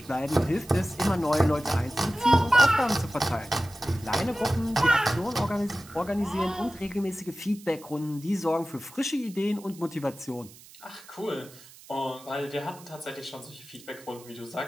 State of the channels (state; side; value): noise; right; hiss, 21 dB below the sound